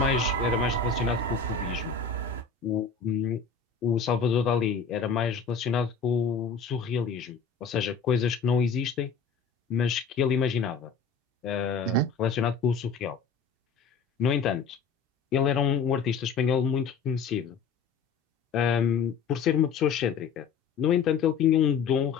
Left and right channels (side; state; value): right; quieter; 5.6 dB